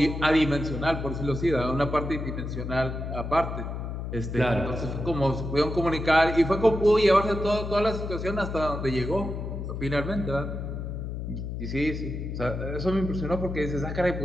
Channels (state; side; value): noise; left; hum, 5 dB below the sound